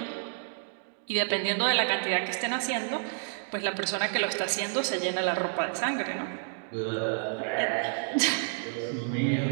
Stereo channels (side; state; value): left; silent; digital silence